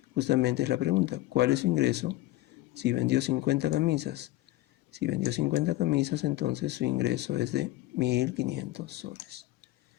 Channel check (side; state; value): right; quieter; 16.7 dB